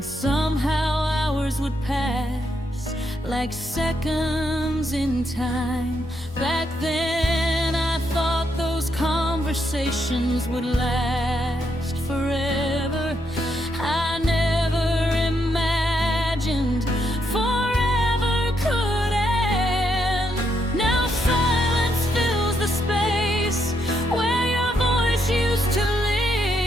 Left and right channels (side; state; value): both; normal; correlation 0.78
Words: somehow hours would pass like seconds in time. Back then I thought those conversations would last forever. I never imagined forever could end. Now silence fills the space where your voice used to live.